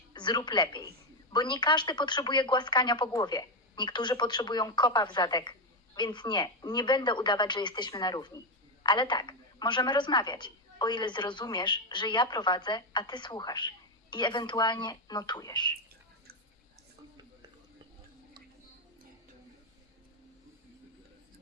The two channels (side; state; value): both; normal; correlation 0.08